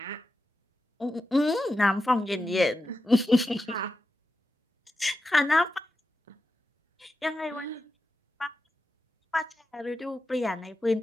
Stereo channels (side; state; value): both; normal; correlation 0.90